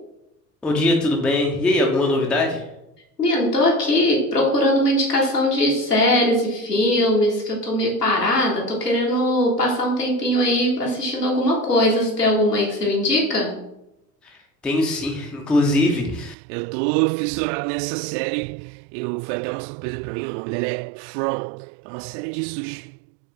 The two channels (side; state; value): left; drops out; at 16.4 s